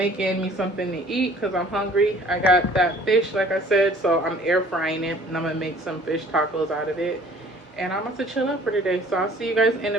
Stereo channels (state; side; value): normal; both; correlation 0.52